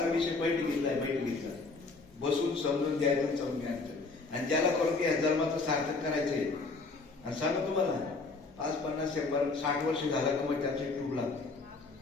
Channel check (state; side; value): quieter; right; 3.8 dB